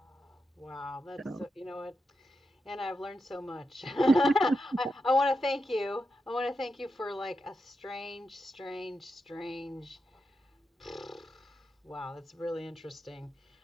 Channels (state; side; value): normal; both; correlation 0.87